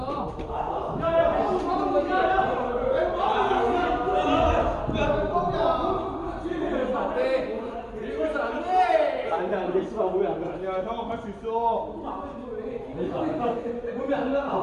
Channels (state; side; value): identical; both; correlation 1.00